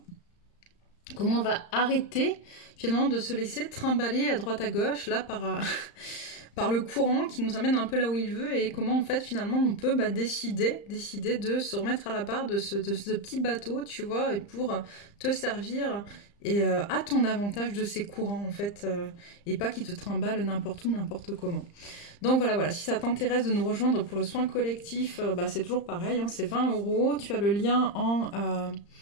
Comment on va arrêter finalement de se laisser trimballer à droite à gauche là par le courant qui nous amène un peu là où il veut, et comment en fait finalement on peut décider de se remettre à la barre de ce petit bateau, tu vois, et pour te servir et à ton avantage de ces courants en fait, et pas qui te trimballent n'importe où, n'importe comment. Donc voilà, si ça t'intéresse de nous rejoindre pour le soin collectif, c'est toujours pareil, hein, c'est 20 €, tu as le lien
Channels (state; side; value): late; right; 35 ms